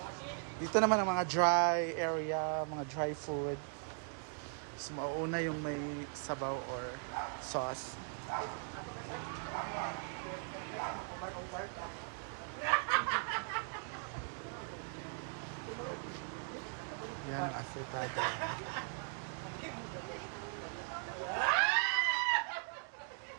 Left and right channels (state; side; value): silent; left; 52 dB below the other